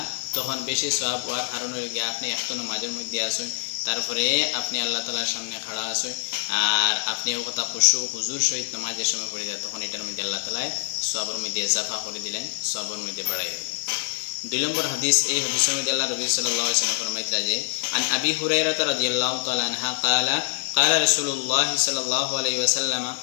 তখন বেশি সওয়াব হওয়ার কারণ হয়ে গিয়া আপনি একটা নামাজের মধ্যে আসুন, তারপরে আপনি আল্লাহ তাআলার সামনে খাড়া আসুন, আর আপনি ও কথা খুশু হুজুর সহিত নামাজের সময় পড়িলা তখন এটার মধ্যে আল্লাহ তাআলা সওয়াবের মধ্যে ইজাফা করে দিলেন, সওয়াবের মধ্যে বাড়াই দিলেন। 2 নম্বর হাদিস, এই হাদিসের মধ্যে আল্লাহ নবী সাল্লাল্লাহু আলাইহি ওয়াসাল্লাম ফরমাইতরা যে আন আবি হুরায়রা রাদিয়াল্লাহু তাআলা আনহা ক্বালা قال رسول الله صلى الله عليه وسلم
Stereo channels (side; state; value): right; silent; digital silence